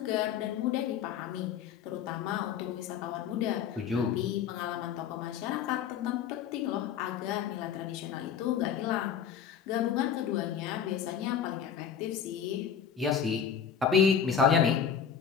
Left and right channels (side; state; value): right; quieter; 7.8 dB